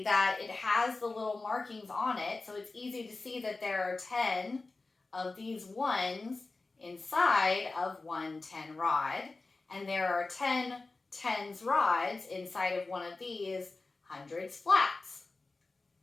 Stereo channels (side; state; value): right; quieter; 3.5 dB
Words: that it has the little markings on it, so it's easy to see that there are 10 of these ones inside of one 10 rod, and there are 10 tens rods inside of one of these hundreds flats.